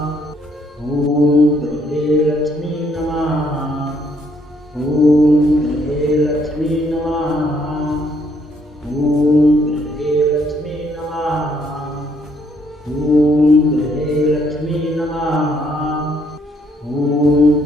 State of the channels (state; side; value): normal; both; correlation 0.70